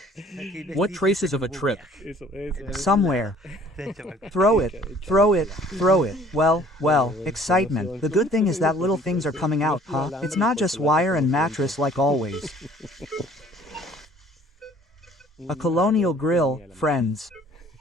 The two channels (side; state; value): both; normal; correlation 0.54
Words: What traces of a trip? Somewhere. Throw it. Well, excitement. The good thing is that little things are coming out, huh? It's not just wire and mattress like always. A colonial grill, friends.